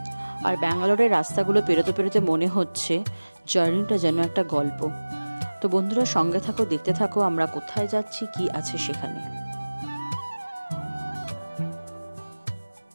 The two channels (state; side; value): inverted; both; correlation -1.00